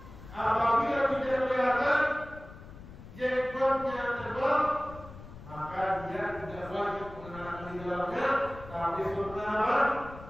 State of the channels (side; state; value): left; noise; rumble, 16 dB below the sound